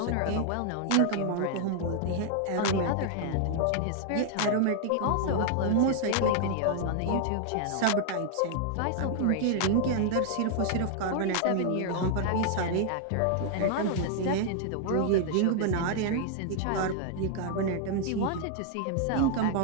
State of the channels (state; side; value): different; both; correlation 0.00